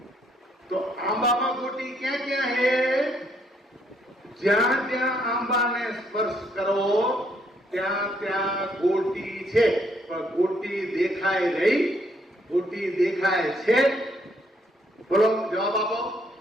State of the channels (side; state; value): both; normal; correlation 0.70